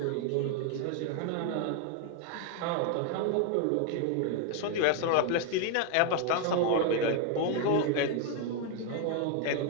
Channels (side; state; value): both; different; correlation 0.01